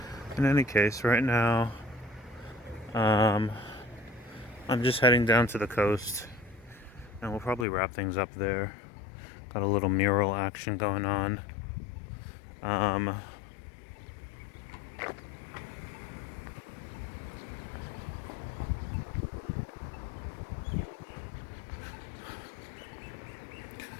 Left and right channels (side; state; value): right; drops out; at 7.7 s